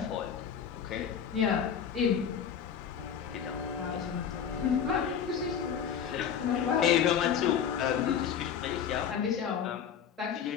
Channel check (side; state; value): right; quieter; 8.0 dB